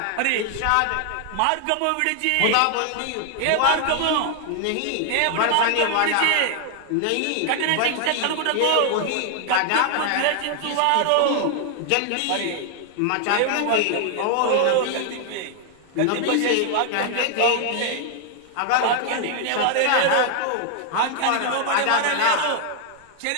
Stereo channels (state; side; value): different; both; correlation 0.00